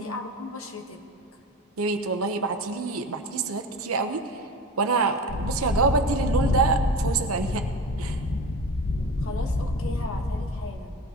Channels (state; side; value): normal; both; correlation 0.32